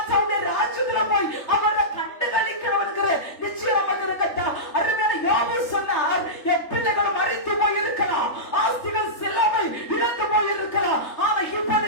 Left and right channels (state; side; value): late; right; 3.3 ms